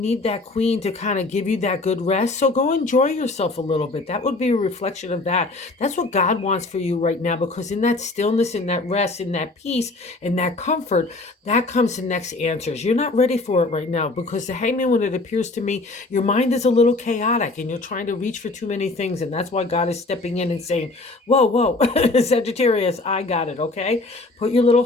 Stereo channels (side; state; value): right; quieter; 3.2 dB